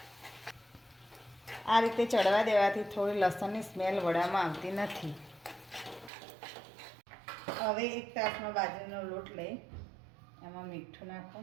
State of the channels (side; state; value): left; drops out; at 6.1 s